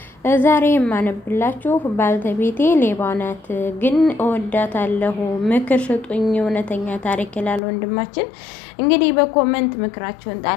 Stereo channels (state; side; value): drops out; right; at 7.6 s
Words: ዛሬ የማነብላችሁ ባልተቤቴ ሌባ ናት ግን እወዳታለሁ፣ ምክር ስጡኝ፣ እውነተኛ ታሪክ ይላል ወንድማችን። እንግዲህ በኮመንት ምክራችሁን